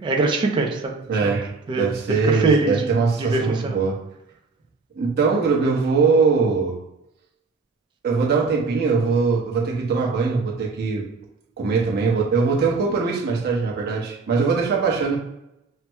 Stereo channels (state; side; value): quieter; left; 4.2 dB